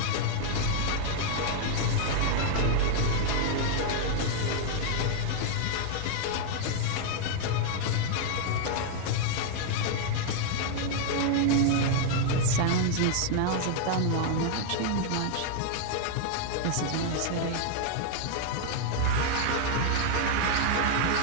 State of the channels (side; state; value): both; different; correlation 0.00